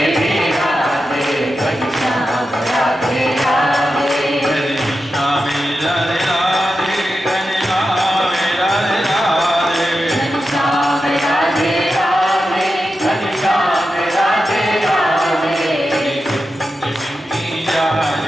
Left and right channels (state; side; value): normal; both; correlation 0.90